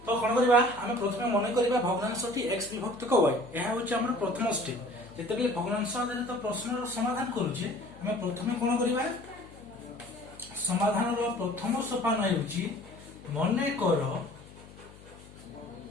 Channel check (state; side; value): noise; left; hum, 20 dB below the sound